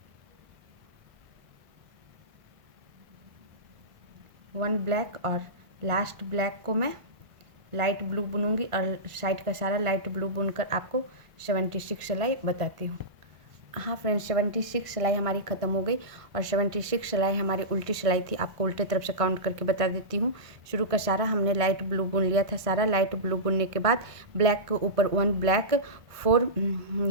1 ब्लैक, और लास्ट ब्लैक को मैं लाइट ब्लू बुनूंगी और साइड का सारा लाइट ब्लू बुनकर आपको 76 सिलाई बताती हूँ। हाँ फ्रेंड्स, 76 सिलाई हमारी ख़त्म हो गई और 76 सिलाई हमारी उल्टी सिलाई थी। आपको उल्टे तरफ से काउंट करके बता देती हूँ। शुरू का सारा हमने लाइट ब्लू बुन लिया था। सारा लाइट ब्लू बुनने के बाद ब्लैक के ऊपर 1 ब्लैक, 4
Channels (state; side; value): late; left; 1.5 ms